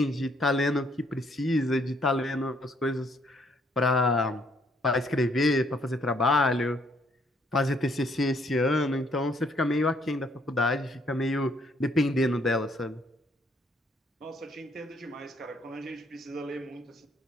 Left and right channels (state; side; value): normal; both; correlation 0.68